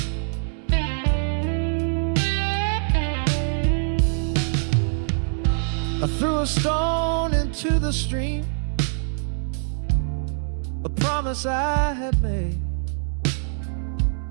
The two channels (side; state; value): left; silent; 63 dB below the other